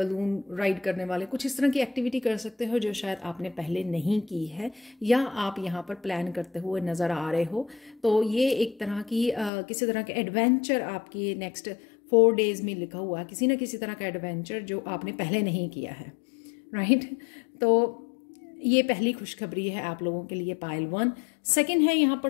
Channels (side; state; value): right; drops out; at 9.5 s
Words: राइड करने वाले, कुछ इस तरह की एक्टिविटी कर सकते हो जो शायद आपने पहले नहीं की है या आप यहाँ पर प्लान करते हुए नज़र आ रहे हो। तो ये एक तरह की किसी तरह के एडवेंचर आपकी नेक्स्ट 4 डेज में लिखा हुआ है, किसी न किसी तरह का एडवेंचर जो आपने पहले नहीं किया है। राइट, तो ये पहली खुशखबरी है आप लोगों के लिए पाइल 1। सेकंड है यहाँ पर